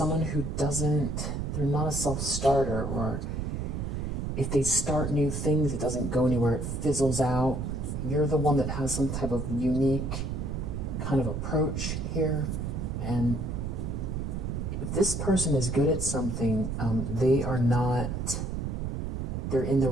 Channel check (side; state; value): right; noise; rumble, 3 dB below the sound